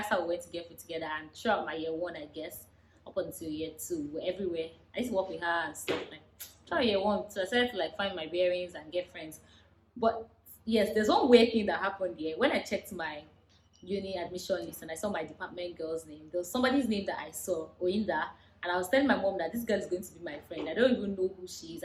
how we went to get food together. And throughout my year one, I guess, up until year two, we're everywhere. I used to work with her and stuff like throughout year one. So I started to like find my bearings and get friends. But yes, there's one weird thing that happened here. When I checked my uni admission list and I saw my department girl's name, there was somebody's name that I saw, Oinda, and I was telling my mom that this girl is going to be my friend. I don't even know who she is.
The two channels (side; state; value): both; identical; correlation 1.00